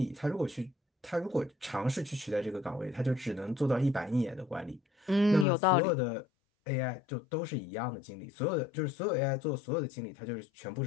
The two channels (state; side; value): drops out; right; at 5.5 s